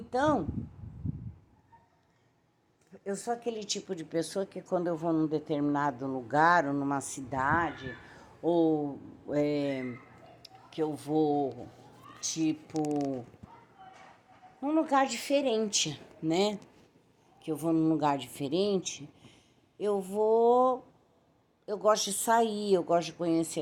eu sou aquele tipo de pessoa que quando eu vou num determinado lugar, ou numa cidade, ou que eu vou, tipo, num lugar diferente, né? Que eu vou num lugar diferente, eu gosto de sair, eu gosto de conhecer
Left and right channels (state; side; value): identical; both; correlation 1.00